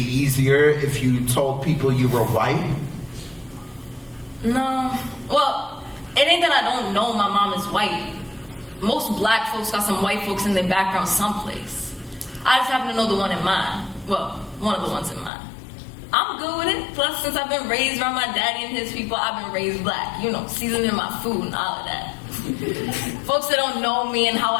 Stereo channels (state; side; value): drops out; right; at 15.3 s